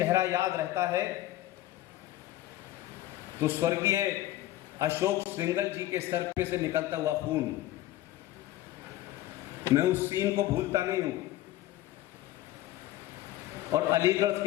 याद रहता है तो स्वर्गीय अशोक सिंघल जी के सर पे से निकलता हुआ खून, मैं उस सीन को भूलता नहीं हूं। और अलीगढ़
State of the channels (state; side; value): quieter; right; 15.1 dB